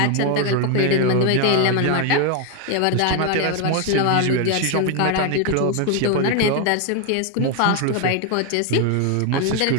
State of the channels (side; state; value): both; different; correlation 0.01